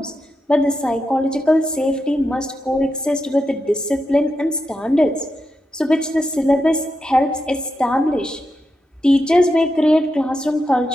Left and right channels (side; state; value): both; normal; correlation 0.87